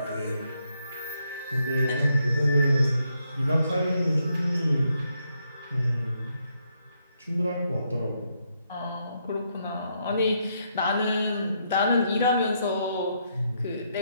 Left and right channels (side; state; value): both; inverted; correlation -0.77